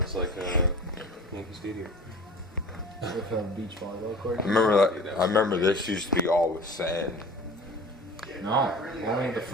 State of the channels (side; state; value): both; normal; correlation 0.40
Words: like a Yankee Stadium. With a beach volleyball court. I remember this used to be all with sand. No, only the